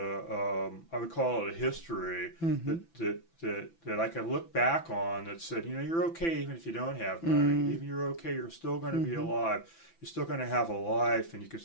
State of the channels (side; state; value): right; late; 6.0 ms